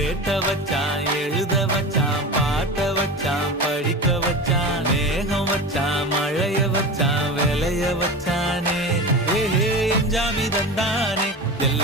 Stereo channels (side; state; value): both; normal; correlation 0.29